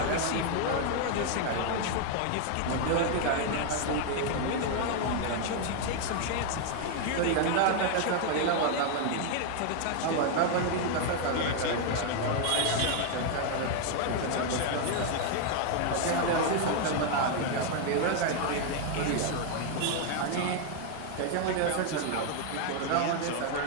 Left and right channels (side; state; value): both; different; correlation 0.00